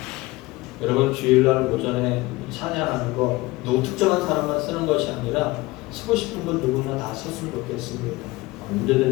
여러분 주일날 오전에 찬양하는 거 누구 특정한 사람만 쓰는 것이 아니라 쓰고 싶은 건 누구나 다 썼으면 좋겠습니다.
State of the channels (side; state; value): right; quieter; 20.9 dB